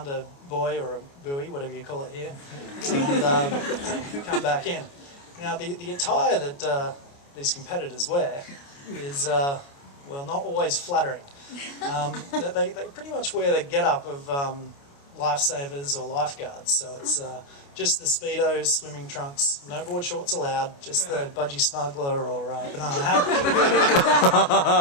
a buoy or a buoy, whatever you call it here, and come back in. Now, the attire that these competitors wear is, well, not always flattering. They pretty much wear the get-up of lifesavers or lifeguards. So it's just the Speedos, swimming trunks, no board shorts allowed, just the budgie smuggler or banana hammock.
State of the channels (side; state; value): right; late; 29 ms